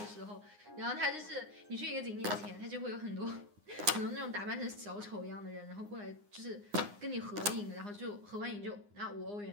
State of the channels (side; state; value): left; late; 9.7 ms